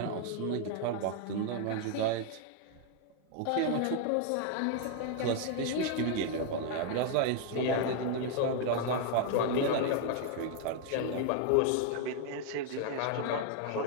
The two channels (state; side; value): different; both; correlation 0.00